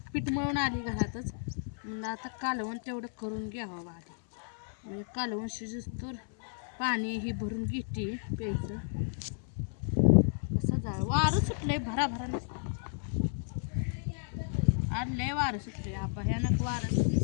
पीठ मळून आली घरातच म्हणलं आता कालवण तेवढं करून घ्यावं बघा म्हणजे कालवण शिजूस तर पाणी ही भरून घेते प्यायचं कसं झालं वारं सुटलंय भराभरा आज लय वारं सुटले हा भयानक वारं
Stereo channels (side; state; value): right; silent; 56 dB below the other